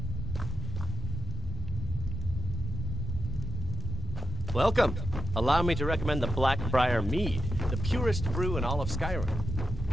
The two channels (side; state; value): both; normal; correlation 0.85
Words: Welcome. Allow me to recommend the Blackbriar Mead, the purest brew in all of Skyrim.